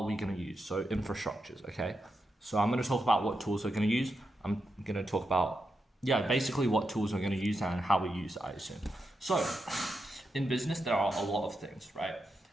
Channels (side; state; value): both; normal; correlation 0.86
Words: we going to use? So infrastructures, okay? So I'm going to talk about what tools we're going to use. I'm going to talk about, basically what tools we're going to use and how we use it, I assume. So in business, there are a lot of things, right?